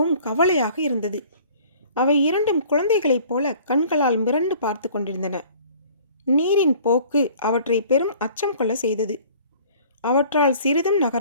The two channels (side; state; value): both; inverted; correlation -0.51